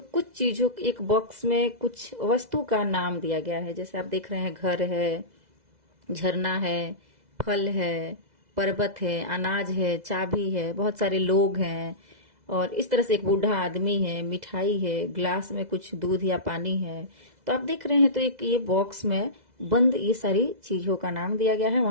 चीजों, एक बॉक्स में कुछ वस्तु का नाम दिया गया है। जैसे आप देख रहे हैं, घर है, झरना है, फल है, पर्वत है, अनाज है, चाबी है, बहुत सारे लोग हैं और इस तरह से एक बूढ़ा आदमी है, मिठाई है, ग्लास में कुछ दूध या पानी है। तो आप देख रहे हैं तो एक ये बॉक्स में बंद ये सारी चीजों का नाम दिया गया है।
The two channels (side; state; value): left; late; 2.0 ms